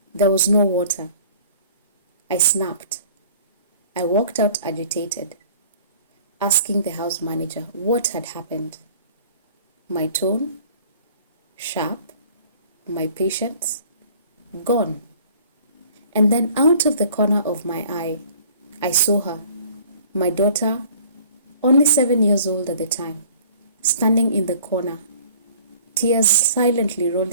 There was no water. I snapped. I walked out agitated, asking the house manager what had happened. My tone, sharp, my patience, gone. And then out of the corner of my eye, I saw her, my daughter, only 7 years old at the time, standing in the corner, tears silently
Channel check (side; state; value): both; inverted; correlation -0.51